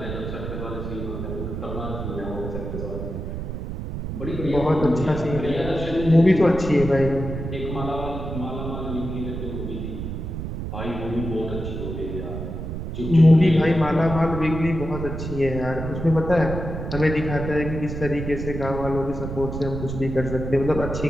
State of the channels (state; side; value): noise; right; rumble, 6 dB below the sound